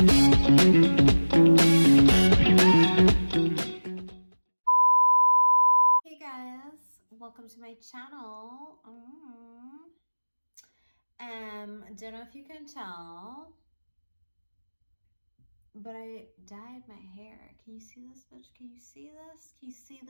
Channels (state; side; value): inverted; both; correlation -1.00